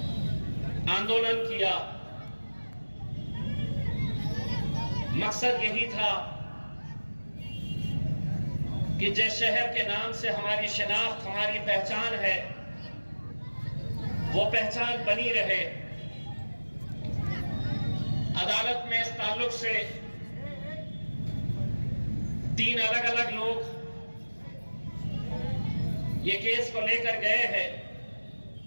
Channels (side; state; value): both; inverted; correlation -1.00